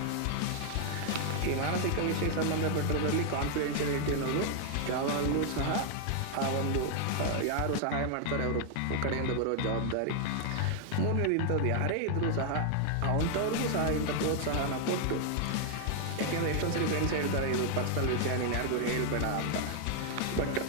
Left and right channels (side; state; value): both; different; correlation 0.00